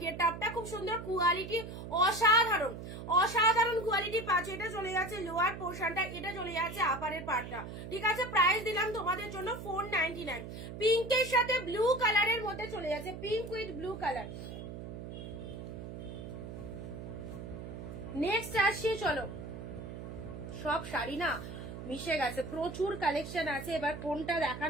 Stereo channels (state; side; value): noise; right; hum, 9 dB below the sound